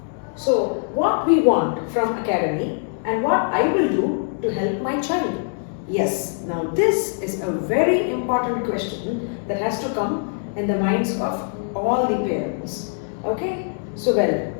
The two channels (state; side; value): silent; right; digital silence